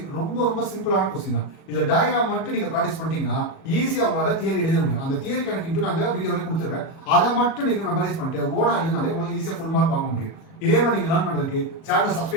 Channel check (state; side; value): late; right; 37 ms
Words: ரொம்ப சிம்பிளான क्वेश्चन தான். இந்த டயகிராம் மட்டும் நீங்க பிராக்டீஸ் பண்ணிட்டீங்கன்னா ஈஸியா உங்களால தியரி எழுத முடியும். அந்த தியரி கணக்கு இன்டு நான் இந்த வீடியோல கொடுத்துறேன். அத மட்டும் நீங்க மெமரைஸ் பண்ணிட்டு ஓனா எழுதினாலே உங்களுக்கு ஈஸியா ஃபுல் மார்க் வாங்க முடியும். இதே மாதிரி நீங்க லேர்ன் பண்றதுக்கு சேனலை